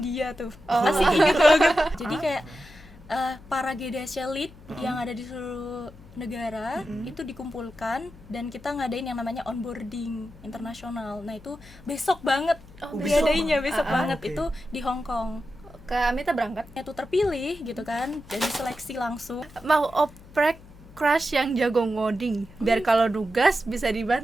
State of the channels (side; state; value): left; noise; hum, 21 dB below the sound